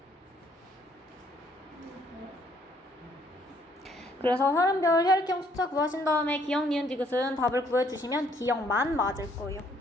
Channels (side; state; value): both; normal; correlation 0.65